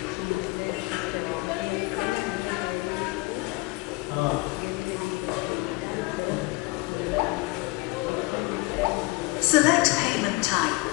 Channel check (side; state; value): right; quieter; 23.6 dB